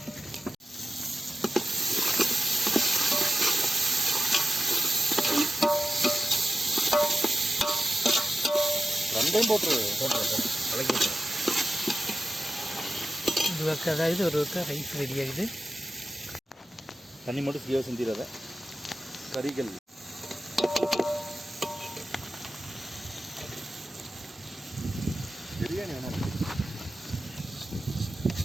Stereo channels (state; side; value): normal; both; correlation 0.92